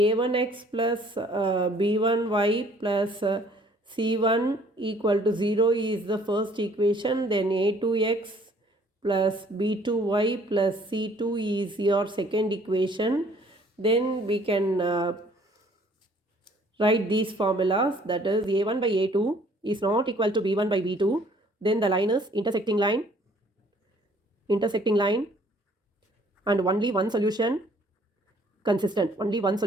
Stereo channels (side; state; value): both; normal; correlation 0.58